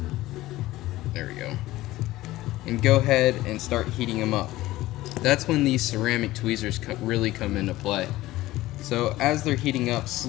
There we go. And go ahead and start heating them up. That's when these ceramic tweezers really come into play. So as they're heating up,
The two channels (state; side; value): quieter; right; 16.9 dB